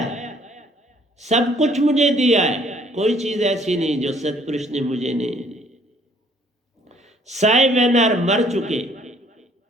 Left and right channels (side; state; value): both; normal; correlation 0.61